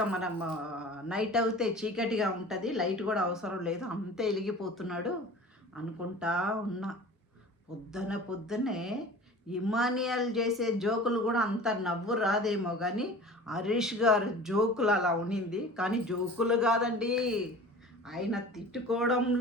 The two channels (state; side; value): normal; both; correlation 0.40